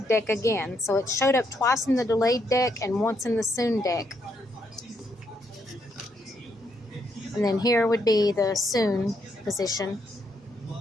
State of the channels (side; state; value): both; normal; correlation 0.77